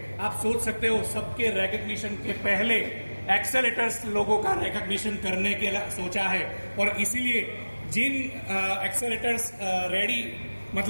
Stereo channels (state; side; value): inverted; both; correlation -1.00